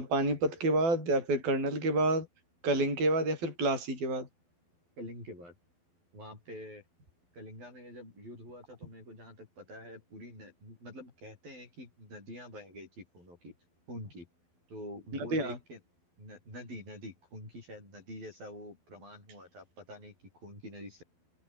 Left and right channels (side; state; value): left; late; 12 ms